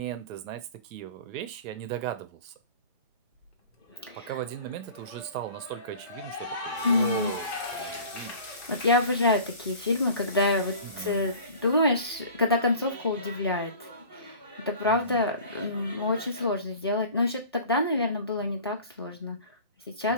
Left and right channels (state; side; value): inverted; both; correlation -0.42